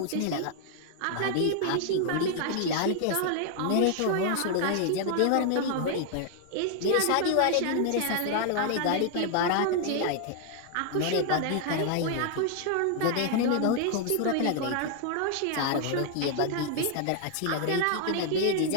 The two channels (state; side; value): different; both; correlation 0.00